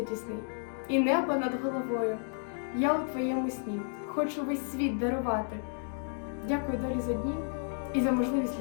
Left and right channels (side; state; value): right; silent; 57 dB below the other